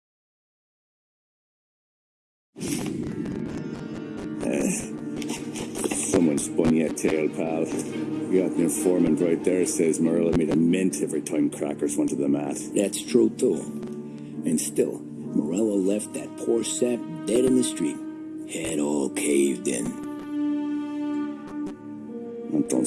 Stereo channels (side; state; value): both; identical; correlation 1.00